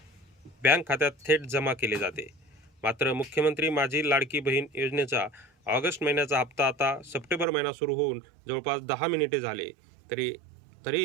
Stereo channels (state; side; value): drops out; left; at 7.5 s